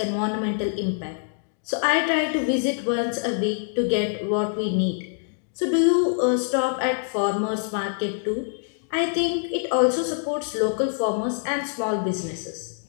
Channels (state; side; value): silent; right; digital silence